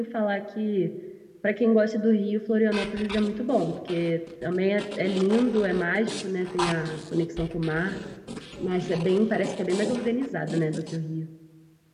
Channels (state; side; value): identical; both; correlation 1.00